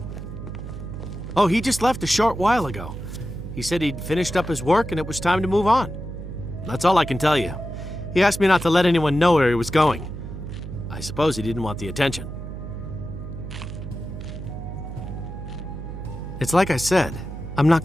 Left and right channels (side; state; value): right; noise; hum, 9 dB below the sound